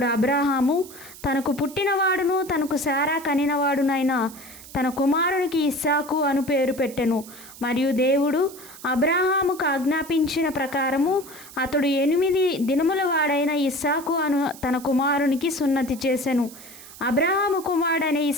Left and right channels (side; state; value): right; noise; hiss, 17 dB below the sound